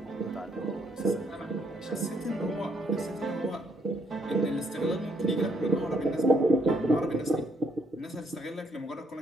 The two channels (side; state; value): both; normal; correlation 0.71